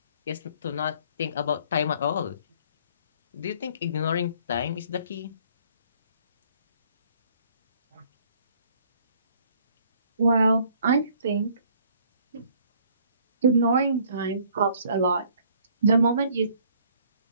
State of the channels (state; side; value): inverted; both; correlation -0.59